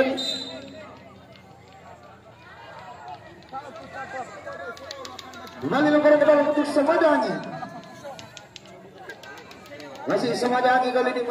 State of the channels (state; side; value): identical; both; correlation 1.00